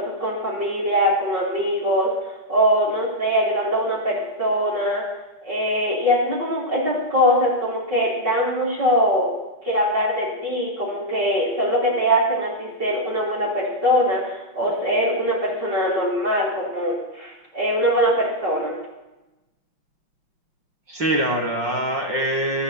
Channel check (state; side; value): late; left; 5.6 ms